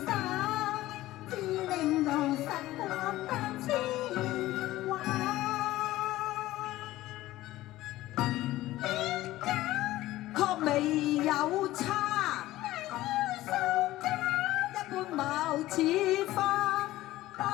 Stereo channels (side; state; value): right; quieter; 16.2 dB